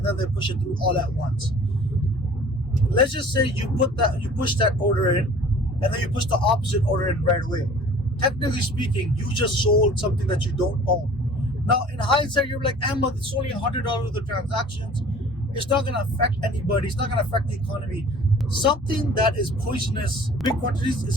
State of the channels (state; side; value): normal; both; correlation 0.48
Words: then they push it through all at once. let's just say you push that order in, and then you push the opposite order in right away. Technically speaking, you just sold something that you don't own. Now, in hindsight, you're like, Ahmed, it's only $100 of the transactions. It's not going to affect anybody. It's not going to affect the economy. Something that is poisonous, big quantities,